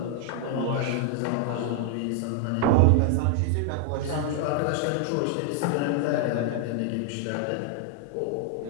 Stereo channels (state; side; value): different; both; correlation 0.00